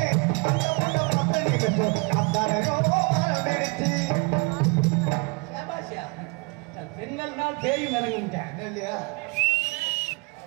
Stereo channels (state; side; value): quieter; left; 30.4 dB